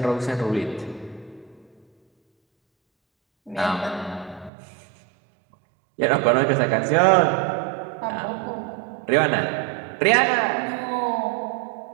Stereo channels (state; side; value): drops out; left; at 4.5 s